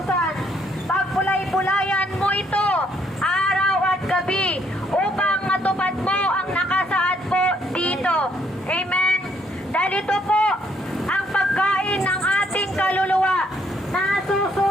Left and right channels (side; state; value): both; normal; correlation 0.69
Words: Pagpulay-pulayan mo ito araw at gabi upang matupad mo ang nakasaad po dito. Amen. Dahil ito po ang pagkain ng ating kaluluwa.